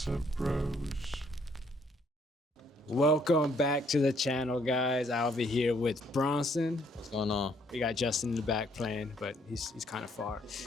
Bros. Welcome back to the channel, guys. I'll be here with Bronson. What's going on? We got Justin in the back playing, but he's kind of far.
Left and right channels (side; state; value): both; normal; correlation 0.67